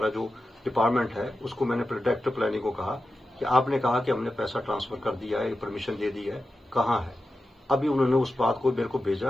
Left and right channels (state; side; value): normal; both; correlation 0.91